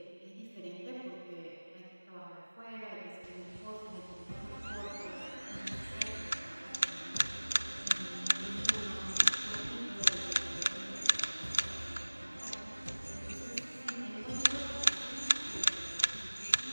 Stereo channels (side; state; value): both; inverted; correlation -1.00